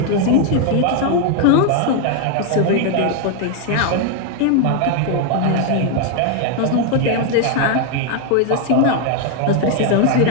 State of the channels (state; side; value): different; both; correlation 0.01